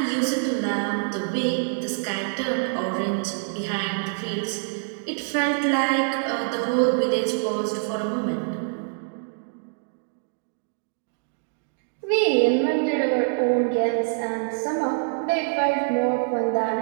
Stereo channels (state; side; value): silent; left; digital silence